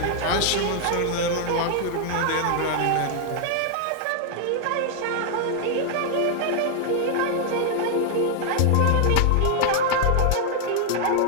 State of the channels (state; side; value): different; both; correlation 0.00